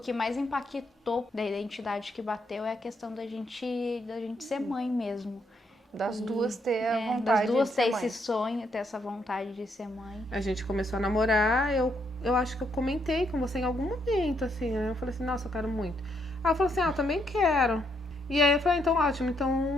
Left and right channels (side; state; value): both; normal; correlation 0.75